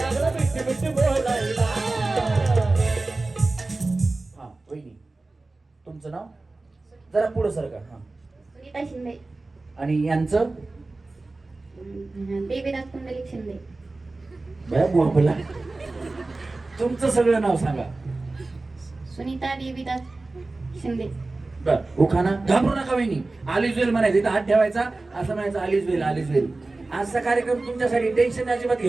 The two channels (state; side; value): quieter; left; 3.3 dB